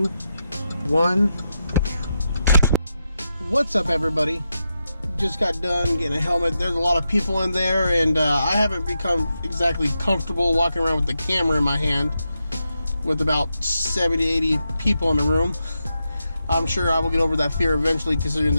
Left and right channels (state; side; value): inverted; both; correlation -0.87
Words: 1. What's up, everybody? Just got done getting a helmet. There's a lot of people in there, and I haven't become exactly comfortable walking around with the camera in my hand with about 70 to 80 people in the room. I'm sure I will get over that fear eventually, considering